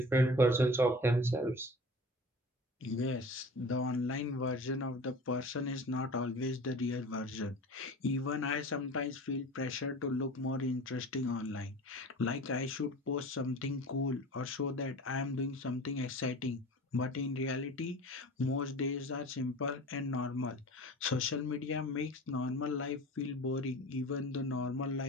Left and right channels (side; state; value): both; normal; correlation 0.37